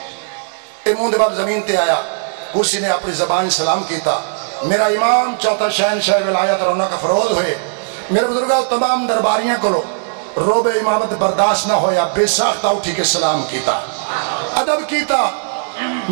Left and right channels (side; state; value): left; silent; digital silence